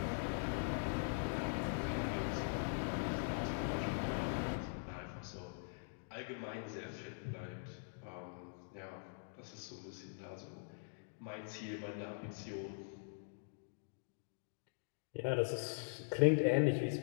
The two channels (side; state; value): right; silent; digital silence